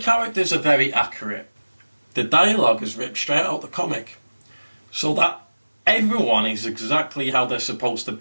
are very accurate. The dialogue is ripped straight out of the comic. So that everyone is exactly how they're supposed to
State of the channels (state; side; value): inverted; both; correlation -1.00